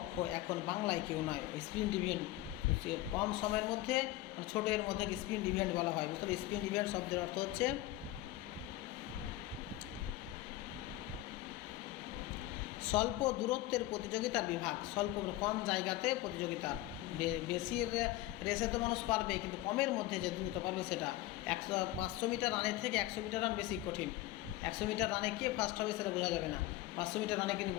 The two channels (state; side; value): quieter; right; 15.8 dB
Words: এখন বাংলায় কেউ নয়। স্প্রিন্ট ইভেন্ট কম সময়ের মধ্যে, মানে ছোটো এর মধ্যে স্প্রিন্ট ইভেন্ট বলা হয়, বুঝতে হবে। স্প্রিন্ট ইভেন্ট শব্দের অর্থ হচ্ছে স্বল্প দূরত্বের প্রতিযোগিতার বিভাগ। স্বল্প কম জায়গাতে প্রতিযোগিতা, বেশি রেসে তো মানুষ পারবে, কিন্তু কমের মধ্যে যে দ্রুত পারবে সেটা। 500 মিটার রানের থেকে 100 মিটার রান বেশি কঠিন। 100 মিটার রানে কে ফার্স্ট হবে সেটা বোঝা যাবে না, 500 মিটার রানে কিন্তু